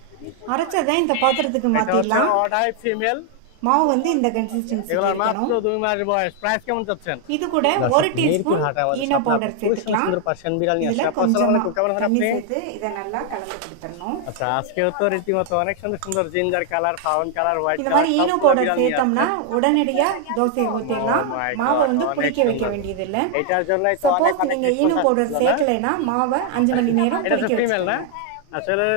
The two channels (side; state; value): both; different; correlation 0.00